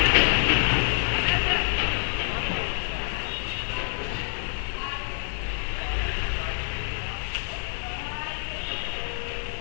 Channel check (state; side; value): silent; right; 60 dB below the other